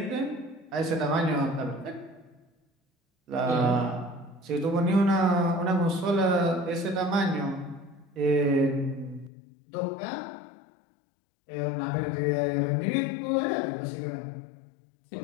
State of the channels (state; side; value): drops out; right; at 9.3 s